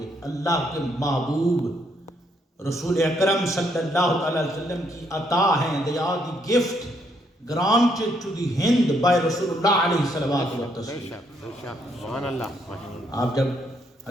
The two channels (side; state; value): both; normal; correlation 0.72